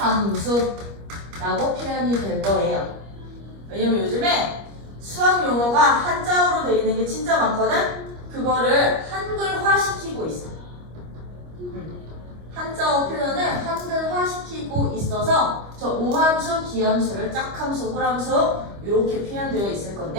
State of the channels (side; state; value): left; late; 25 ms